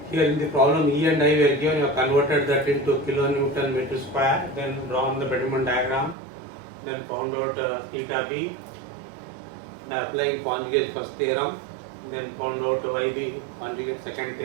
Here in the problem E and I were given, you have converted that into kilonewton meter square, then drawn the Bending diagram, then found out theta B by applying conjugate first theorem, then found out YB conjugate second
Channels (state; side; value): drops out; left; at 6.2 s